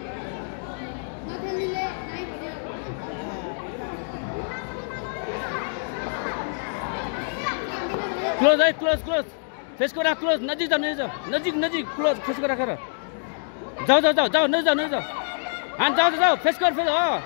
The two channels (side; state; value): right; silent; digital silence